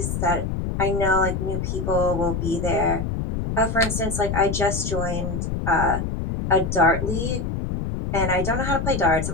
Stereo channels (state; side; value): noise; left; rumble, 3 dB below the sound